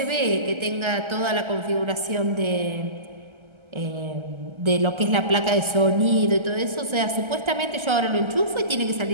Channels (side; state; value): left; late; 1.3 ms